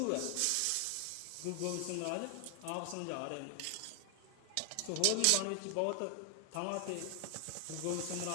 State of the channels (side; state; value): both; different; correlation 0.00